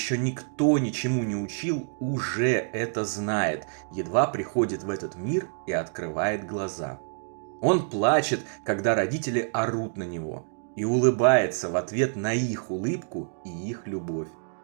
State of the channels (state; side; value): silent; left; digital silence